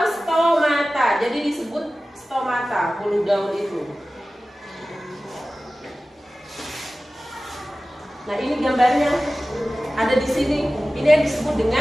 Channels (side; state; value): both; normal; correlation 0.96